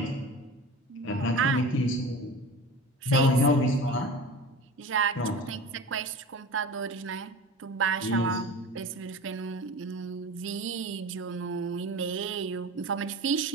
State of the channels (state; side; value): normal; both; correlation 0.34